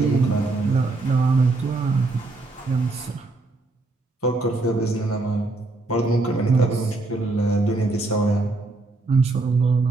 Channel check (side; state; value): left; quieter; 3.2 dB